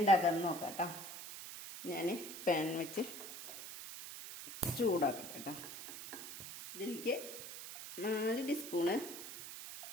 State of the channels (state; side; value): noise; right; hiss, 10 dB below the sound